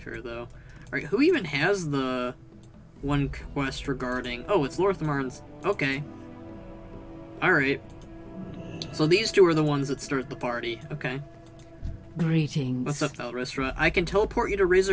though. Alright, who even has the one quest regarding... Oh, it's Lorthamarn's... Okay. Alright. So these two are the ones that start the party. Okay. Greetings. What's up, Valristra? I can teleport you to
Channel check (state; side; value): identical; both; correlation 1.00